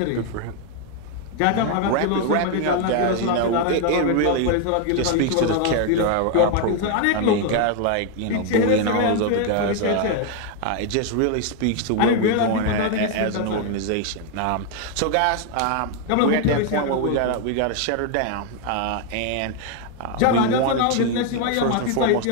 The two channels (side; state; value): both; different; correlation 0.01